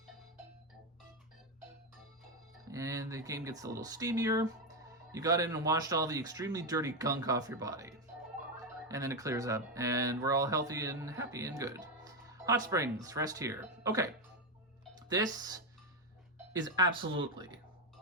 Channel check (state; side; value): normal; both; correlation 0.08